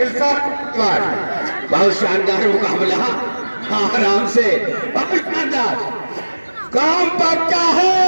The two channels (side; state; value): both; inverted; correlation -1.00